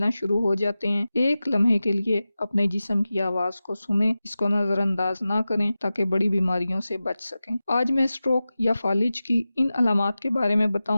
शुरू हो जाते हैं। एक लम्हे के लिए अपने जिस्म की आवाज़ को सुनें, इसको नज़रअंदाज ना करें ताकि बड़ी बीमारियों से बच सकें। आज मैं स्ट्रोक या फालिज की इन अलामात के बारे में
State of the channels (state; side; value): inverted; both; correlation -0.95